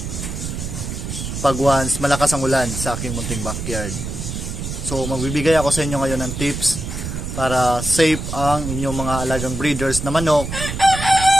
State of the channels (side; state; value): right; noise; rumble, 6 dB below the sound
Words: pag once malakas ang ulan sa aking munting backyard. So magbibigay ako sa inyo ngayon ng tips para safe ang inyong mga alagang breeders na manok